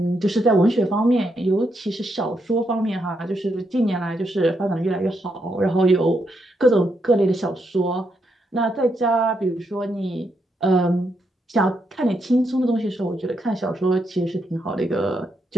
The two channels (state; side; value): normal; both; correlation 0.80